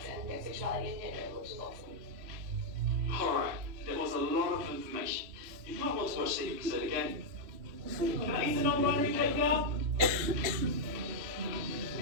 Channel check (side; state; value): left; late; 3.1 ms